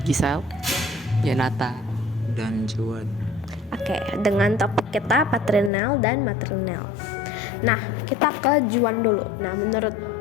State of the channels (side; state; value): right; drops out; at 5.7 s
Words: Gisel, Yanata, dan Juan. Oke, dengan topik kita paternal dan maternal. Nah, kita ke Juan dulu. Nah, menurut